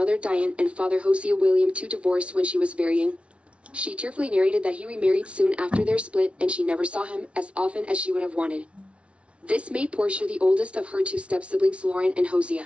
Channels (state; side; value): late; left; 0.061 ms